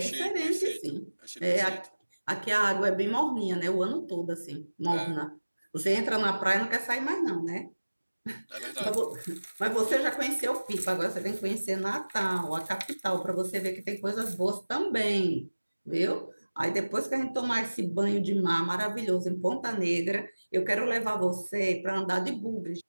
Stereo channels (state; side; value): inverted; both; correlation -1.00